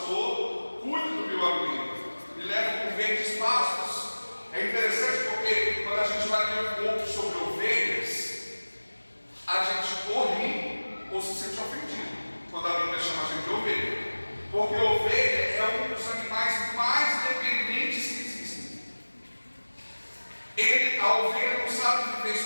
cuida do meu amigo, me leva por verdes pastos. É interessante porque quando a gente vai ler um pouco sobre ovelhas, a gente corre ou se sente ofendido quando a Bíblia chama a gente de ovelha, porque ovelha é um dos animais mais dependentes que existem. A ovelha não sabe viver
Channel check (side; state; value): both; inverted; correlation -1.00